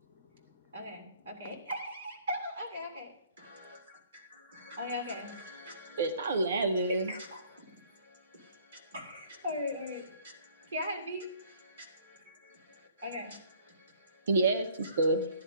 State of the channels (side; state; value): both; inverted; correlation -0.58